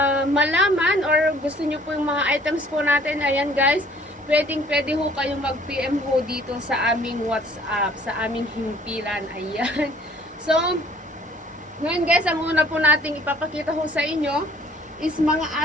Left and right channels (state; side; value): normal; both; correlation 0.57